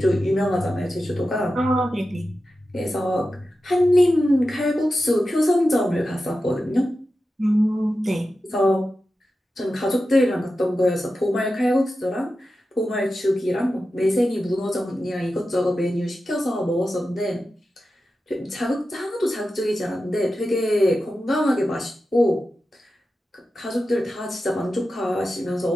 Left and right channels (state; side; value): normal; both; correlation 0.92